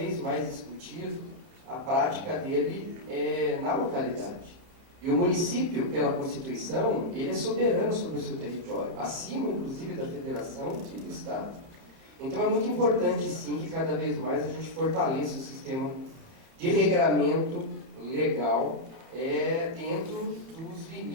mais discutido, a prática dele na localidade. E o município, pela Constituição, ele é soberano sobre o seu território, acima, inclusive, da federação e do Estado. Então é muito importante, sim, que cada vez mais a gente fortaleça o sistema de regramento legal dentro dos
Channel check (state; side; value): late; left; 31 ms